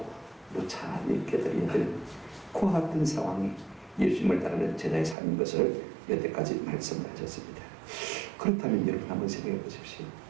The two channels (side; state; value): left; drops out; at 5.2 s